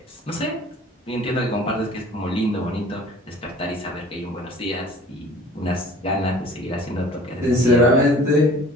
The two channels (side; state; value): both; normal; correlation 0.48